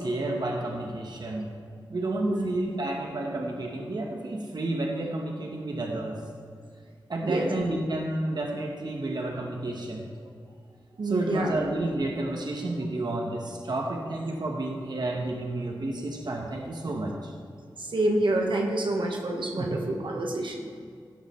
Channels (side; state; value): both; normal; correlation 0.83